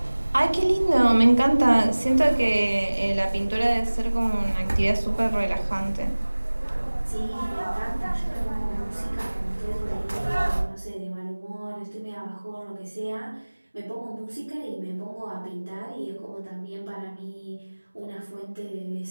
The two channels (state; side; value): inverted; both; correlation -1.00